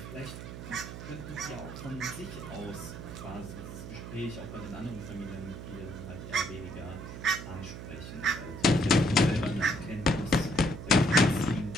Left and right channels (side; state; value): right; noise; hum, 10 dB below the sound